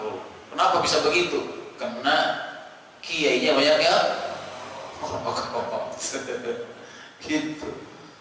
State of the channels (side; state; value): both; identical; correlation 1.00